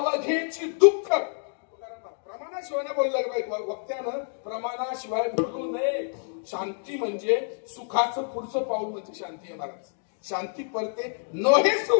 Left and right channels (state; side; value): silent; right; digital silence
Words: दुःख. प्रमाणाशिवाय बोललं वक्त्यानं, प्रमाणाशिवाय बोलू नये. शांती म्हणजे सुखाचं पुढचं पाऊल म्हणजे शांती आहे महाराज. शांती परते नोहे